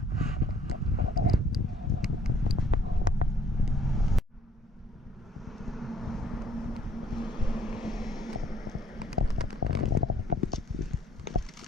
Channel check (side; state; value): both; normal; correlation 0.63